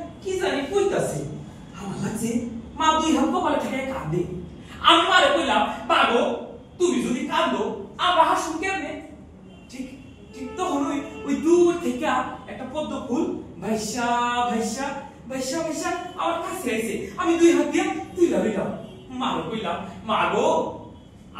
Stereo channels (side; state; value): both; identical; correlation 1.00